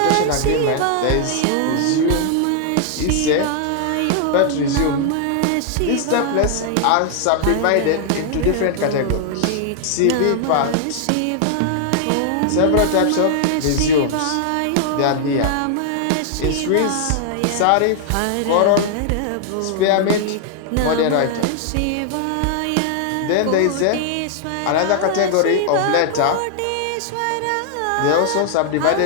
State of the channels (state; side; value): different; both; correlation 0.00